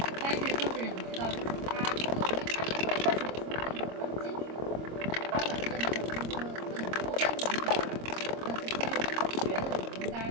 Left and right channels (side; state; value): left; late; 25 ms